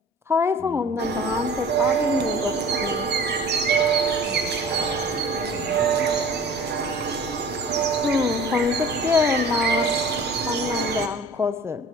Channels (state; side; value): normal; both; correlation 0.45